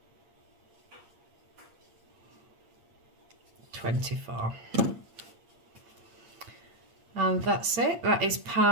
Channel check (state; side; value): late; left; 8.6 ms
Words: 24. And that's it. That is